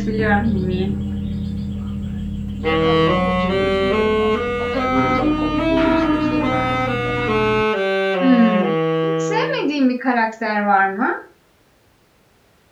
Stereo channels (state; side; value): identical; both; correlation 1.00